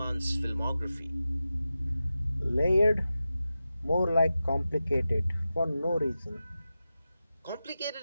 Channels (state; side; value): inverted; both; correlation -0.93